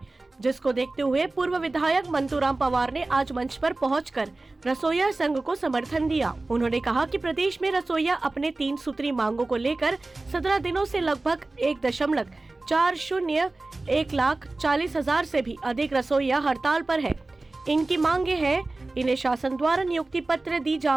जिसको देखते हुए पूर्व विधायक मंतूराम पवार ने आज मंच पर पहुंचकर रसोइया संघ को समर्थन दिया। उन्होंने कहा कि प्रदेश में रसोइया अपने 3 सूत्री मांगों को लेकर 17 दिनों से लगभग 1,40,00,000 से भी अधिक रसोइया हड़ताल पर है। इनकी मांगे हैं, इन्हें शासन द्वारा नियुक्ति पत्र दी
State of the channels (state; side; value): quieter; left; 3.1 dB